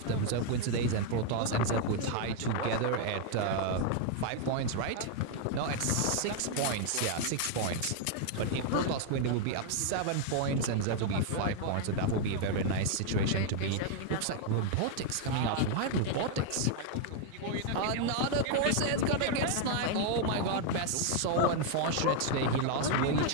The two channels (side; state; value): both; different; correlation 0.00